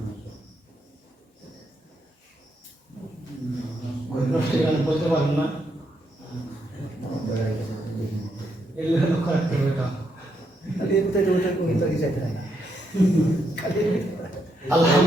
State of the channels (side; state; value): both; normal; correlation 0.78